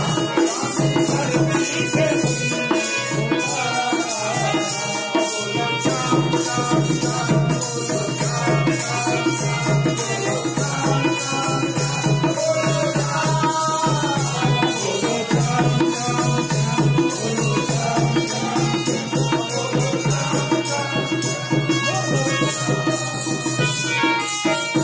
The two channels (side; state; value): both; identical; correlation 1.00